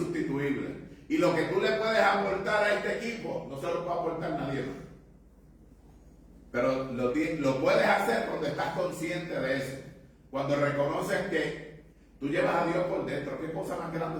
Y lo que tú le puedes aportar a este equipo, no se lo puede aportar nadie más. Pero lo puedes hacer cuando estás consciente de eso. Cuando reconoces que tú llevas a Dios por dentro, ¿qué cosa más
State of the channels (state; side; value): identical; both; correlation 1.00